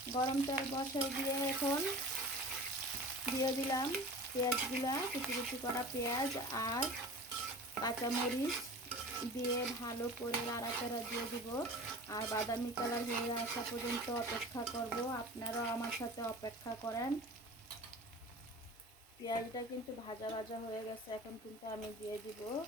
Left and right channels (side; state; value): both; normal; correlation 0.37